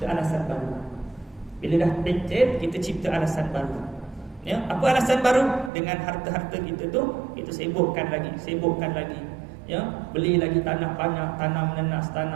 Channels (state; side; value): drops out; left; at 5.7 s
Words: alasan baru. Bila dah pencet, kita cipta alasan baru. Ya, apa alasan baru? Dengan harta-harta kita tu, kita sibukkan lagi. Ya, beli lagi tanah banyak, tanam nenas,